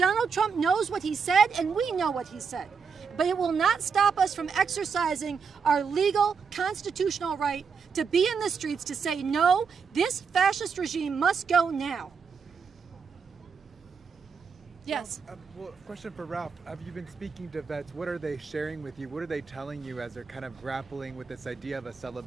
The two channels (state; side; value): quieter; left; 5.8 dB